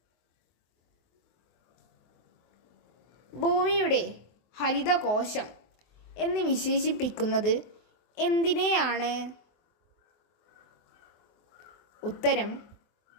ഭൂമിയുടെ ഹരിതകോശം എന്ന് വിശേഷിപ്പിക്കുന്നത് എന്തിനെയാണ്? ഉത്തരം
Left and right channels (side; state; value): right; late; 23 ms